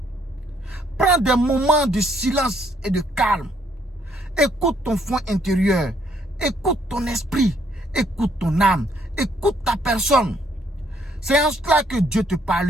Prends des moments de silence et de calme. Écoute ton fond intérieur. Écoute ton esprit. Écoute ton âme. Écoute ta personne. C'est en cela que Dieu te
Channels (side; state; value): both; normal; correlation 0.68